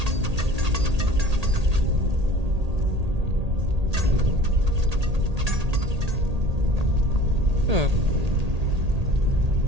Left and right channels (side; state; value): left; late; 1.8 ms